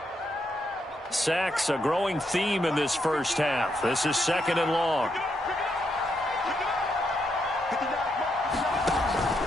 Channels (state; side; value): normal; both; correlation 0.79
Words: Sacks, a growing theme in this first half. This is 2nd and long.